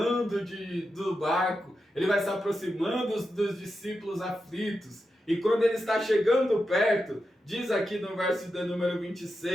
do barco, ele vai se aproximando dos discípulos aflitos. E quando ele está chegando perto, diz aqui no verso de número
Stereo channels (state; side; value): normal; both; correlation 0.89